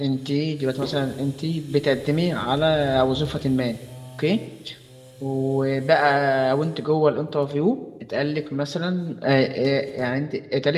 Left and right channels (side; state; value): both; identical; correlation 1.00